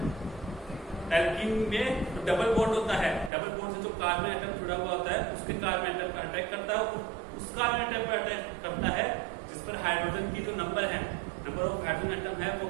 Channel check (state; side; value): drops out; left; at 3.3 s